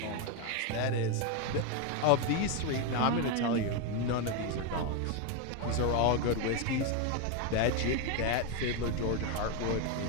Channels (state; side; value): different; both; correlation 0.02